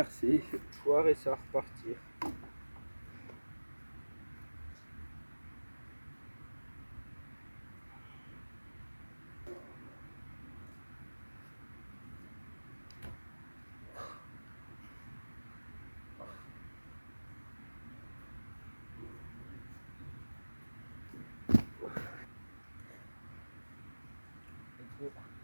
foire et ça va repartir.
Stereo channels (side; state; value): both; inverted; correlation -1.00